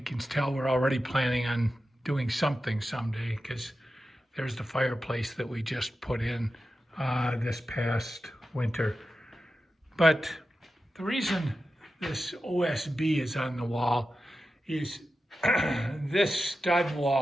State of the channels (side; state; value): both; normal; correlation 0.91